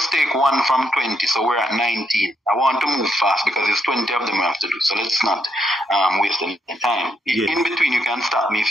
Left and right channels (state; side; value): normal; both; correlation 0.77